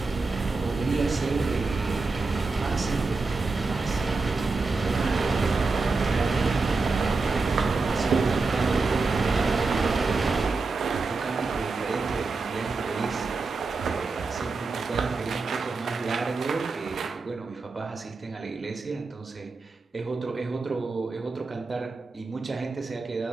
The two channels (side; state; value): left; quieter; 3.9 dB